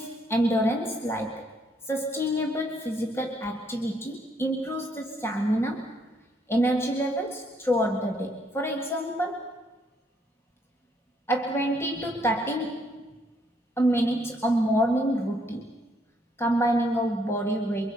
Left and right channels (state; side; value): normal; both; correlation 0.70